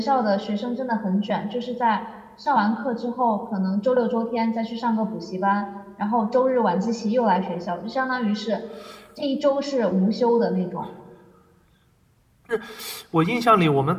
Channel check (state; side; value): identical; both; correlation 1.00